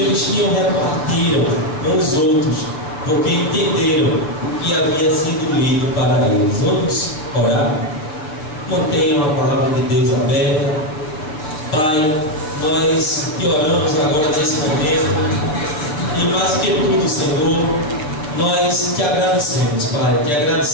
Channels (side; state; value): right; late; 6.7 ms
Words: eles tinham repartiram com os outros, porque entenderam o que havia sido lido para eles. Vamos orar? Mantenham a palavra de Deus aberta. Pai, nós te oramos agora nesse momento. E mais que tudo, Senhor, nós te agradecemos, Pai. Te